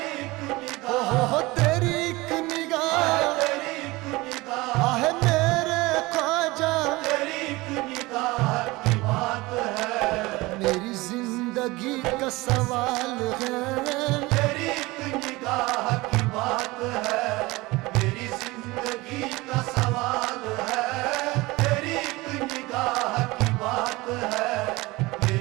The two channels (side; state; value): left; quieter; 21.5 dB